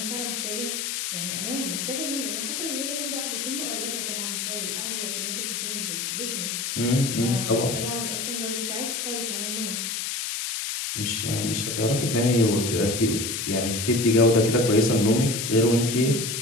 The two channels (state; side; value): noise; left; hiss, 3 dB below the sound